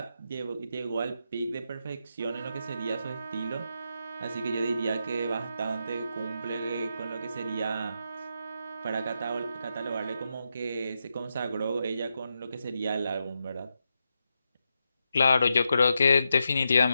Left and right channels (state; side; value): inverted; both; correlation -0.85